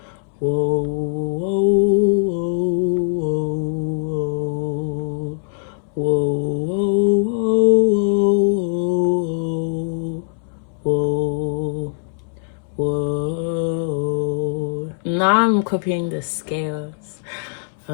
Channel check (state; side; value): silent; right; 65 dB below the other